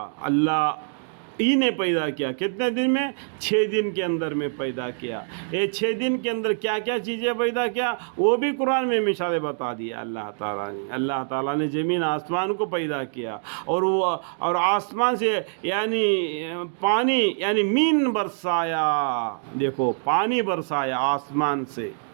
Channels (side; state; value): left; silent; digital silence